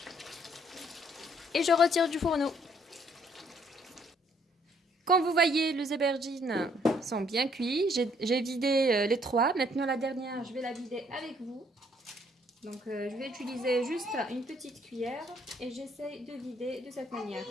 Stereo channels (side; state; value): both; normal; correlation 0.66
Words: Et je retire du fourneau. Comme vous voyez, les aubergines sont bien cuits. J'ai vidé les 3. Maintenant la dernière, je vais la vider avec vous. Donc je vais utiliser juste une petite cuillère et j'essaie de vider de cette manière.